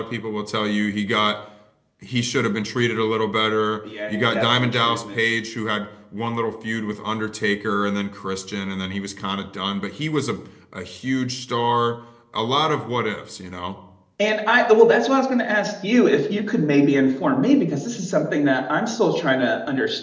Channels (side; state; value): both; identical; correlation 1.00